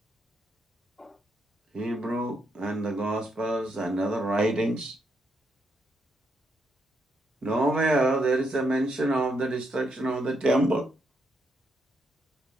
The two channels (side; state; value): both; normal; correlation 0.78